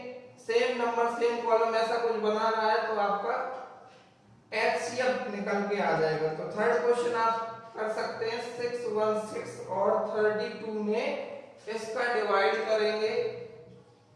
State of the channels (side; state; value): both; identical; correlation 1.00